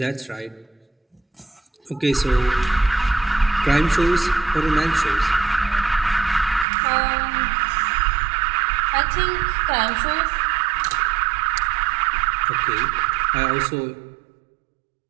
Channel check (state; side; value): drops out; left; at 6.7 s